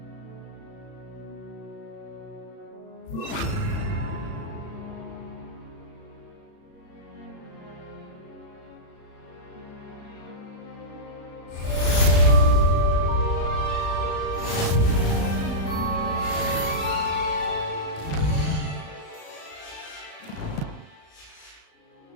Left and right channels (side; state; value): right; late; 36 ms